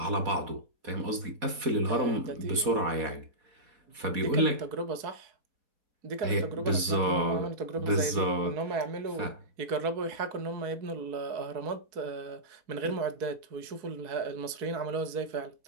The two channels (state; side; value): late; left; 4.1 ms